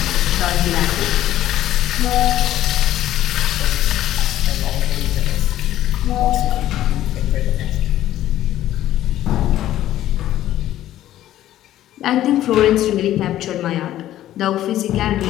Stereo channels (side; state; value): right; quieter; 13.2 dB